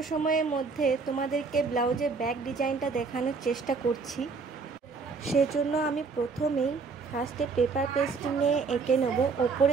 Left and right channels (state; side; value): quieter; left; 4.7 dB